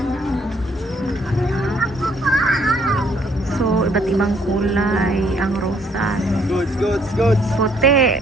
So iba't ibang kulay ang rosas. Puti,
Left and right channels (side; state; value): both; normal; correlation 0.66